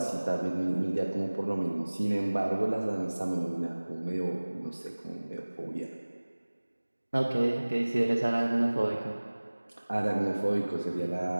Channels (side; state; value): both; inverted; correlation -1.00